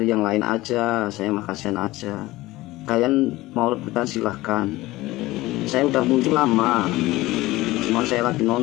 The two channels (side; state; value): right; quieter; 18.5 dB